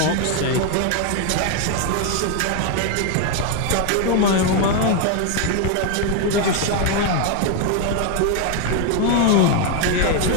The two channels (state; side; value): different; both; correlation 0.01